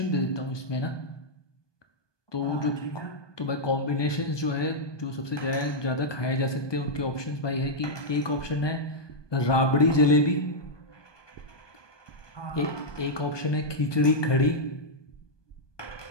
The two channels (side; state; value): right; late; 1.2 ms